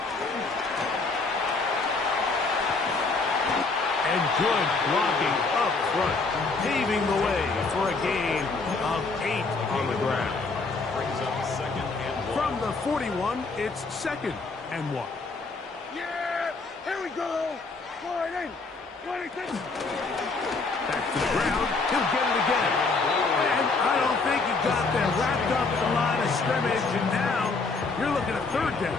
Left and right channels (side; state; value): right; quieter; 3.9 dB